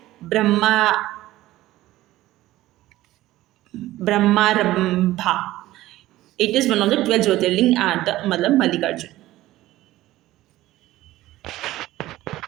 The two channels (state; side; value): quieter; left; 15.9 dB